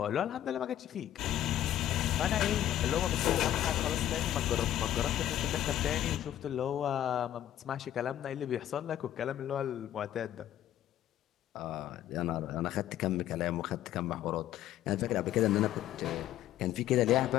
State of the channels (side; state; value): right; quieter; 12.2 dB